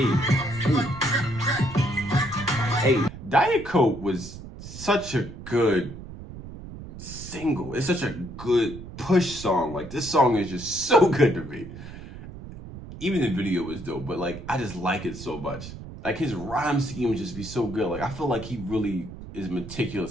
Hey, Diet Coke was such a good single. It's such a good Push song. Like, this song is just so good to me. Even the video was dope, but like, I just like it so much. Like, his rhyme scheme would just be so good. Like, I feel like he really is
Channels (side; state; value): right; noise; rumble, 13 dB below the sound